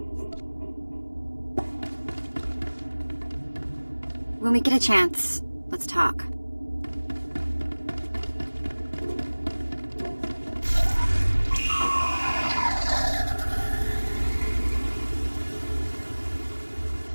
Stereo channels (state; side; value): inverted; both; correlation -1.00